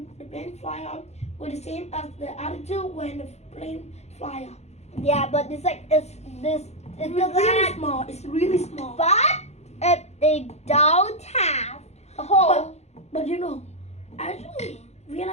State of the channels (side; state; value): right; late; 0.32 ms